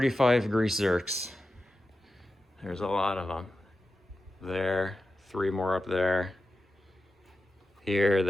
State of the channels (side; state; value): both; normal; correlation 0.92